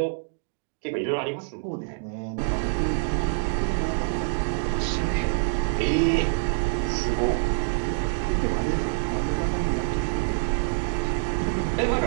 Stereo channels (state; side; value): silent; left; digital silence